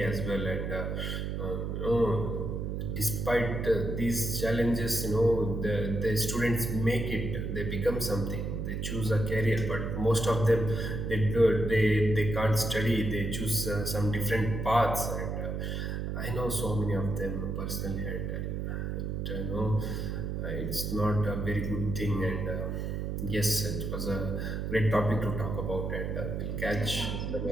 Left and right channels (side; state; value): right; noise; hum, 2 dB below the sound